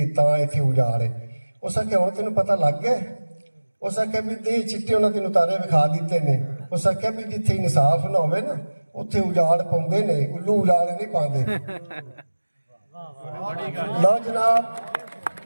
ਤਾਂ ਇੱਥੇ ਉਜਾੜ ਹੈ। ਉਸ ਆਖਿਆ ਹੁਣ ਤੈਨੂੰ ਪਤਾ ਲੱਗ ਗਿਆ। ਉਸ ਆਖਿਆ ਵੀ ਦੇ ਚਿੱਟੇ ਉਹਨਾਂ ਤੈਨੂੰ ਤਾਰੇ ਵਿਖਾ ਦਿੱਤੇ ਨੇ। ਉਸ ਆਖਿਆ ਵੀ ਜਿੱਥੇ ਇਨਸਾਫ ਨਾ ਹੋਵੇ ਨਾ ਉੱਥੇ ਉਜਾੜ ਪਾਉਂਦੇ ਨੇ, ਉੱਲੂ ਉਜਾੜ ਨਹੀਂ ਪਾਉਂਦੇ। ਲਓ ਜਨਾਬ,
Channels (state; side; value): inverted; both; correlation -1.00